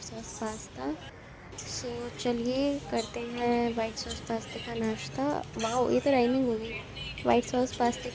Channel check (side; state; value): both; identical; correlation 1.00